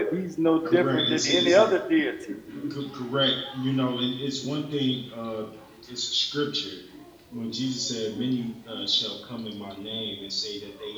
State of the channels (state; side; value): identical; both; correlation 1.00